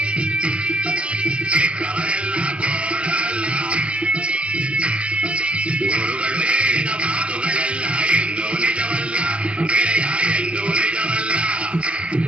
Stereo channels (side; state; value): left; late; 0.060 ms